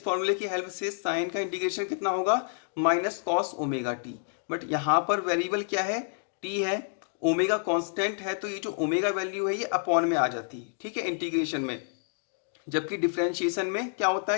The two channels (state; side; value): silent; right; digital silence